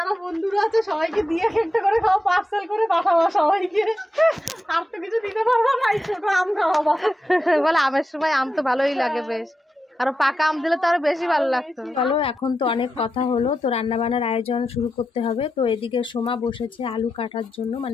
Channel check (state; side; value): normal; both; correlation 0.89